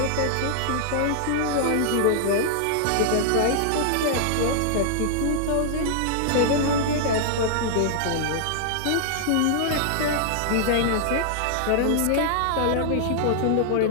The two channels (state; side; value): different; both; correlation -0.01